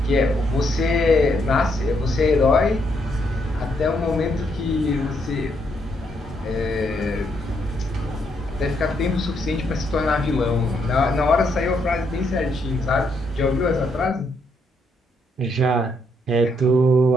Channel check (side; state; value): both; normal; correlation 0.75